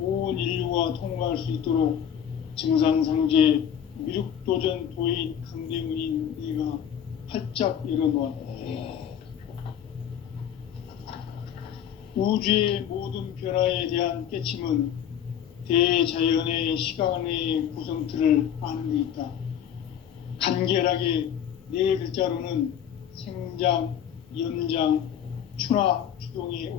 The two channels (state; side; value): quieter; right; 9.2 dB